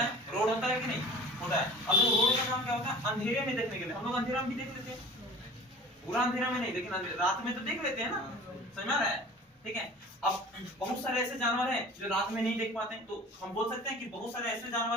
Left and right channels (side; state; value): both; normal; correlation 0.43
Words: रोड होता है कि नहीं? होता है। अब रोड का काम क्या होता है? अंधेरे में देखने के लिए। हम लोग अंधेरा में भी देख लेते हैं, पूरा अंधेरा में नहीं, लेकिन रात में तो देख लेते हैं ना। समझ रहा है? ठीक है। अब बहुत सारे ऐसे जानवर हैं जो रात में नहीं देख पाते हैं, तो हम बोल सकते हैं कि बहुत सारे ऐसे